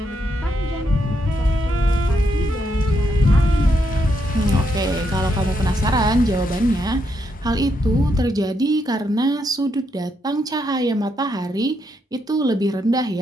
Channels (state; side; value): normal; both; correlation 0.79